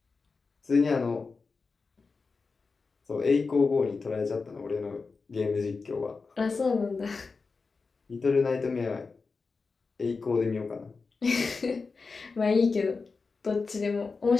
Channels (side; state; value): right; quieter; 4.4 dB